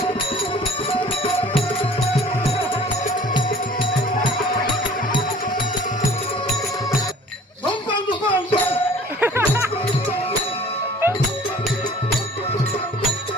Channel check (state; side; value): normal; both; correlation 0.50